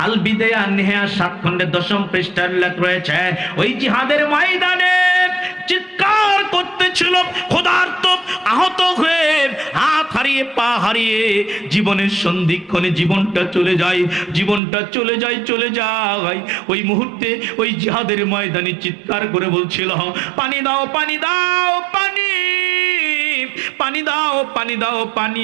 আল বিদায়া নেহা 7 খণ্ডের 10ম পৃষ্ঠার উল্লেখ রয়েছে, ওই জিহাদের ময়দানে চিৎকার করতেছিল ক্ষুধার্ত, আহত হয়ে, হাত হারিয়ে, পা হারিয়ে, জীবনের সন্ধিক্ষণে জীবনটা চলে যায়, চলে যায়। ওই মুহূর্তে ওই জিহাদের ময়দানে চিৎকার করে বলছিল, পানি দাও, পানি দাও, পানি, পানি দাও, পানি দাও,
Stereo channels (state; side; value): drops out; left; at 14.6 s